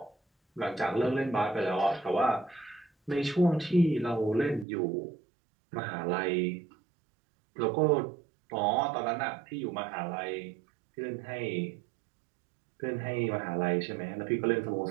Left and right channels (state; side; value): drops out; left; at 4.7 s